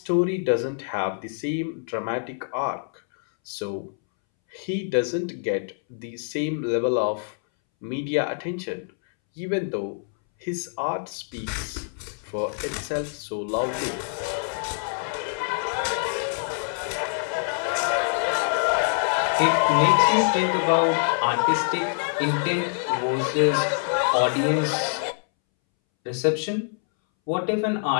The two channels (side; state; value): right; silent; 61 dB below the other